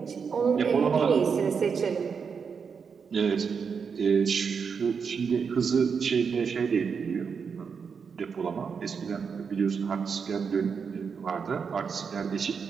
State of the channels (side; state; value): left; quieter; 6.1 dB